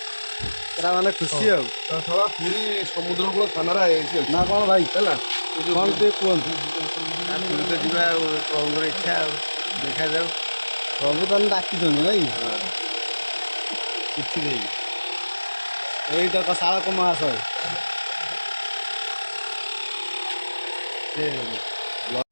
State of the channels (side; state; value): both; inverted; correlation -1.00